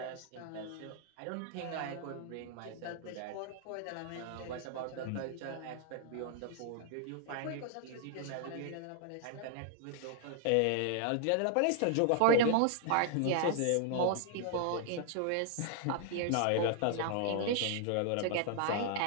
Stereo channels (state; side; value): different; both; correlation 0.00